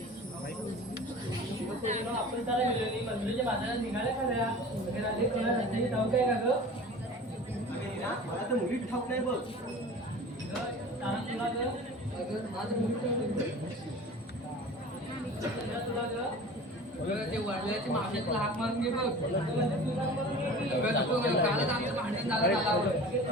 आपण त्याला गेलो मंदिराच्या बाजारात निघाल्या खऱ्या वगैरे आले कोणा रस्त्याची ठाऊक काय का ग मला तर मुली ठाऊक नाही बघ तुला ग माझं मुली तुला ग ते वडिलाची मागण्यातला हाक मारून घे बघ कालच आमचं भांडण झालं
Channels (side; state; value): both; normal; correlation 0.40